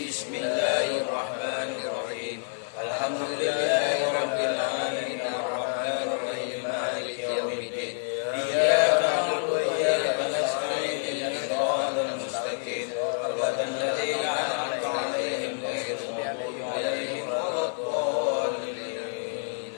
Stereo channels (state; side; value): silent; right; 55 dB below the other